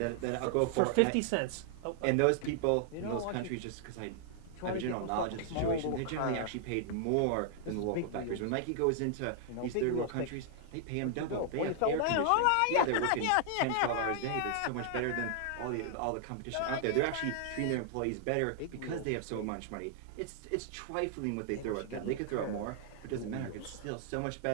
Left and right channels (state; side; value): different; both; correlation -0.01